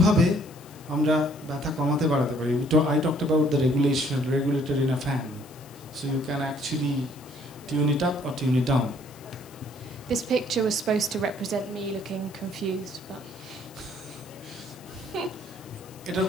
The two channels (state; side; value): noise; left; hiss, 23 dB below the sound